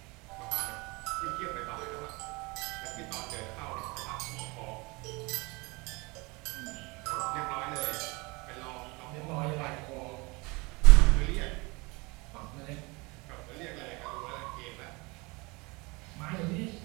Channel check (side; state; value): left; quieter; 26.4 dB